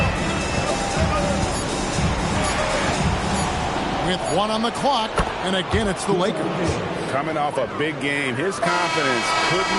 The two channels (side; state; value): both; identical; correlation 1.00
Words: With 1 on the clock, and again it's the Lakers. Coming off a big game, his confidence couldn't